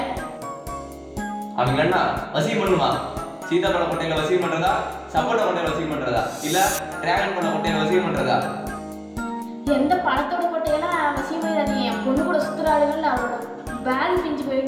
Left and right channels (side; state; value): both; identical; correlation 1.00